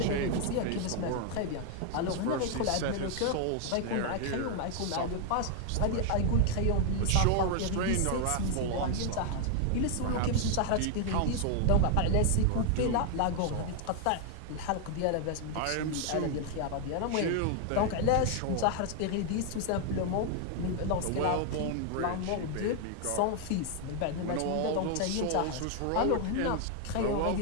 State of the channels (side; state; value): both; different; correlation 0.00